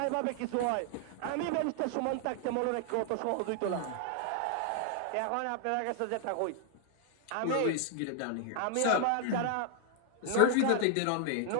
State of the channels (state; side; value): different; both; correlation 0.00